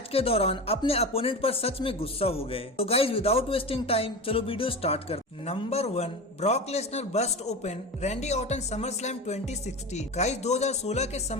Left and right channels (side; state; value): both; normal; correlation 0.27